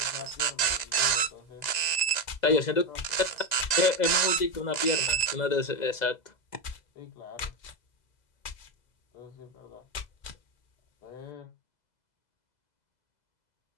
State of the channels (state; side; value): late; right; 1.9 ms